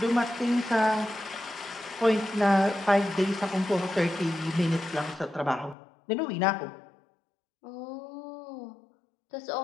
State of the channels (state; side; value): drops out; right; at 5.8 s